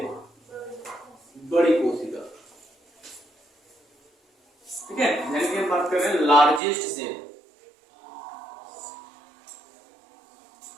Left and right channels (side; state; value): left; drops out; at 6.6 s